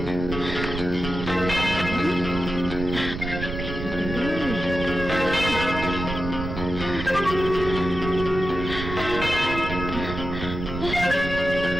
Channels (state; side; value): noise; right; rumble, 7 dB below the sound